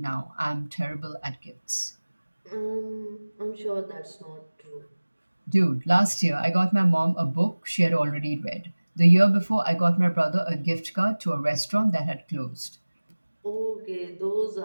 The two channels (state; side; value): inverted; both; correlation -1.00